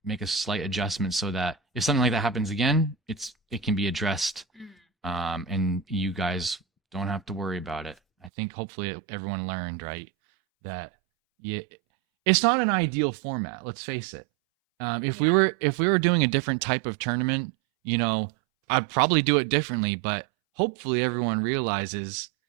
make a slight adjustment so that if something like that happens again, it can be addressed, and you guys don't have to worry about it. I think hopefully everyone learned, right, that it's not an ideal format. Let's face it. If we were doing a different type of tournament, I'd probably do it differently. But hopefully everyone realizes,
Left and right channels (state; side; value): drops out; left; at 8.3 s